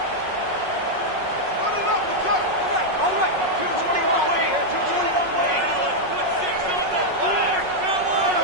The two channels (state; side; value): late; left; 5.4 ms